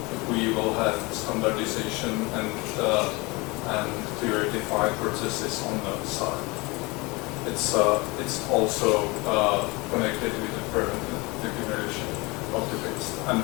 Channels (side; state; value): right; quieter; 25.3 dB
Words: if we will have standardization and clear defined processes on the side. It's also connected with the preventive generation of the waste. And